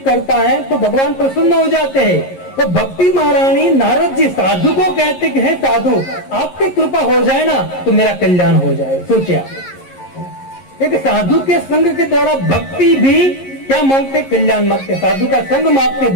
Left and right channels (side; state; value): right; late; 11 ms